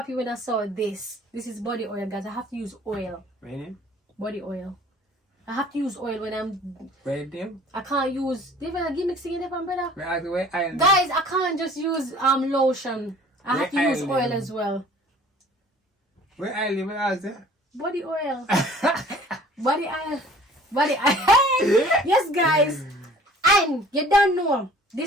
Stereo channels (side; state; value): both; normal; correlation 0.50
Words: when I saw this. This is body oil, guys. I have to use oil. Ready? Body oil. I have to use oil when I'm ready. I can't use different gimmicks to get brother. Guys, I can't just use lotion. I have to use oil as well. Where I live, where is it? Body oil. Body oil. Yes, guys. And you don't know,